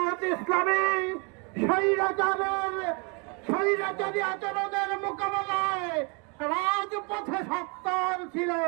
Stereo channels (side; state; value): left; quieter; 32.8 dB